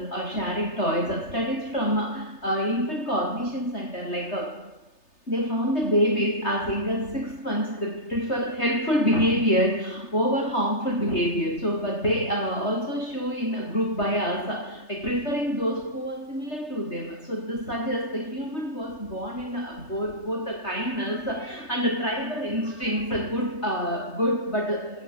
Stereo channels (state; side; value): late; right; 3.3 ms